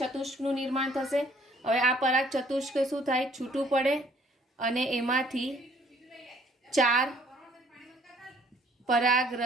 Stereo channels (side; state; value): both; normal; correlation 0.60